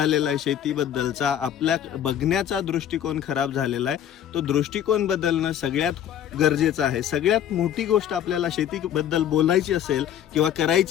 आहे शेतीबद्दलचा, आपल्या बघण्याचा दृष्टिकोन खराब झालेला आहे. तो दृष्टिकोन बदलणं सगळ्यात गरजेचं आहे. सगळ्यात मोठी गोष्ट आपल्याला शेतीबद्दल बोलायची असेल किंवा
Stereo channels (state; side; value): quieter; right; 10.2 dB